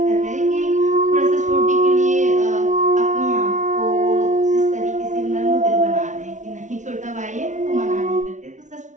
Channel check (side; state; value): left; late; 0.36 ms